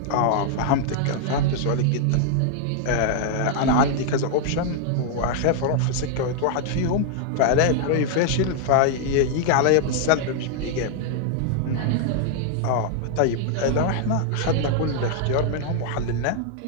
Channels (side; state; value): both; different; correlation 0.00